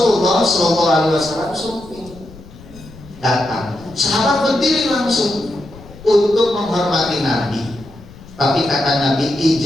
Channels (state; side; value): noise; left; rumble, 19 dB below the sound